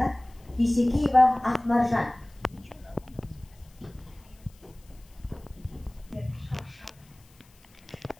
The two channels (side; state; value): left; noise; hiss, 29 dB below the sound